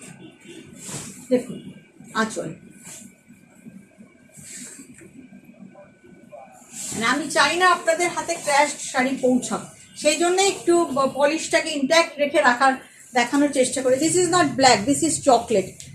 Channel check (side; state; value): both; identical; correlation 1.00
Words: দেখুন আঁচল, মানে আমি চাই না আপনাদের হাতে ক্র্যাশ শাড়ি পৌঁছাক, সেই জন্য একটু পলিশটাকে ইনট্যাক্ট রেখে দেখানোর চেষ্টা করি। This is not black, this is chocolate,